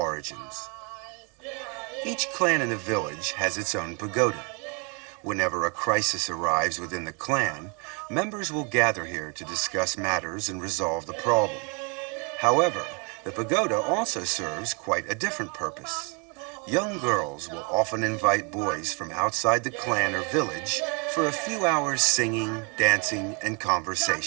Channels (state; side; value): quieter; left; 33.9 dB